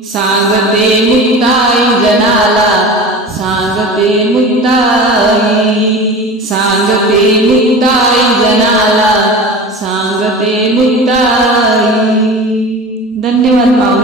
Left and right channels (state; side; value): normal; both; correlation 0.34